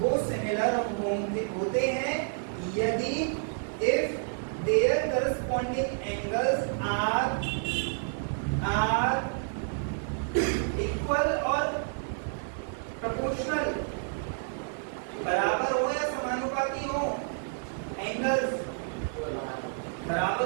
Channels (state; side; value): silent; left; digital silence